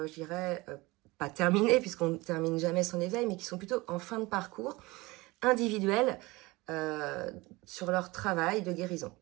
dirais, pas terminé, puisqu'on ne termine jamais son éveil, mais qui sont plutôt en fin de parcours individuel, sur leur travail de guérison.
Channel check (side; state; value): left; quieter; 22.3 dB